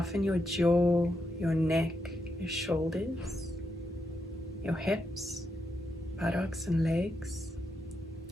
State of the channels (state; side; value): normal; both; correlation 0.83